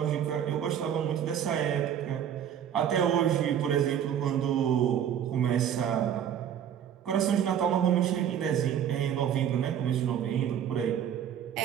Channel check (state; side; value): quieter; left; 9.4 dB